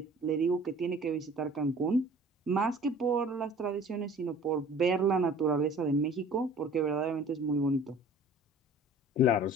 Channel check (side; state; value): both; normal; correlation 0.48